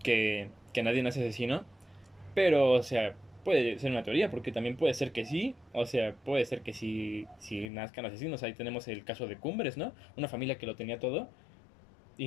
nadie nace asesino, pero, o sea, puede ser una teoría, porque también puede ser que sí, o sea, puede ser que sí nazcan asesinos. Ahí tenemos el caso de Cumbres, ¿no? Una familia que lo tenía todo,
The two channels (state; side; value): drops out; right; at 7.7 s